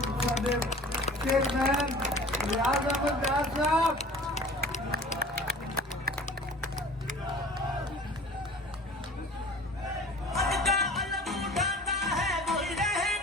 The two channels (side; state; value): both; normal; correlation 0.43